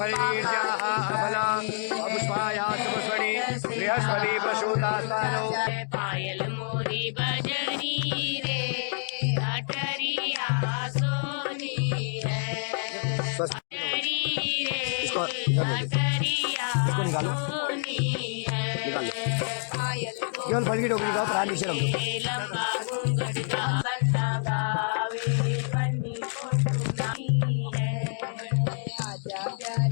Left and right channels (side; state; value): right; silent; 60 dB below the other